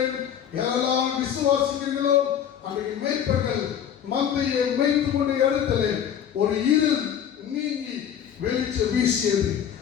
யாரெல்லாம் விசுவாசிக்கிறீர்களோ அன்றைக்கு மேய்ப்பர்கள் மந்தையை மேய்த்து கொண்ட இடத்துல ஒரு இருள் நீங்கி வெளிச்சம் வீசியது.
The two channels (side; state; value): right; quieter; 9.1 dB